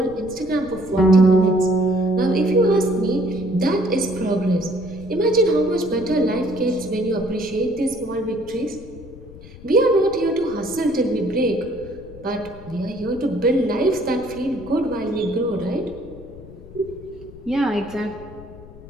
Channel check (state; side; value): noise; left; rumble, 18 dB below the sound